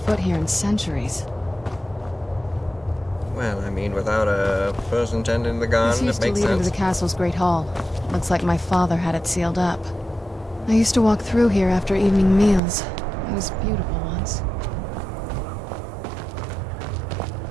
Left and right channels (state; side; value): drops out; left; at 12.6 s